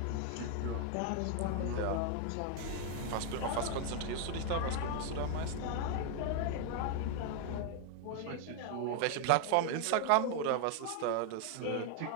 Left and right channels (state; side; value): different; both; correlation 0.00